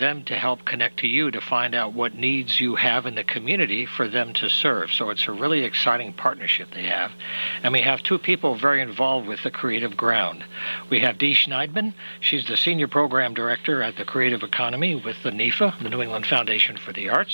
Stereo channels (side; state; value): both; inverted; correlation -1.00